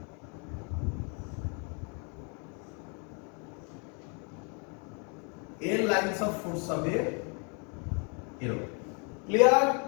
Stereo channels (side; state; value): right; quieter; 36.5 dB